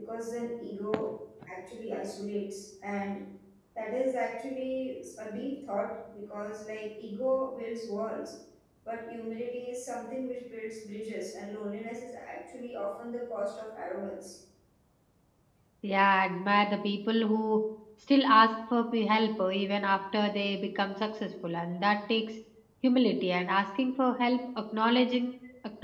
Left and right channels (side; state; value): both; identical; correlation 1.00